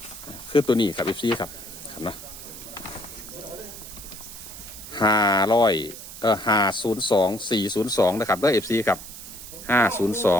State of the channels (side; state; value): right; noise; hiss, 13 dB below the sound